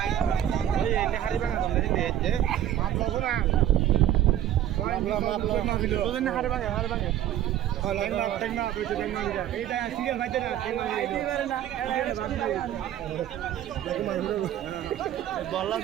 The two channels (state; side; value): quieter; left; 11.7 dB